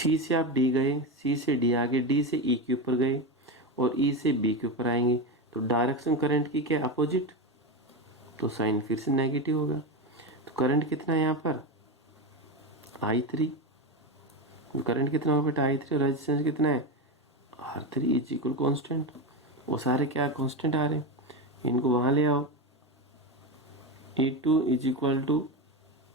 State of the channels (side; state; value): both; normal; correlation 0.16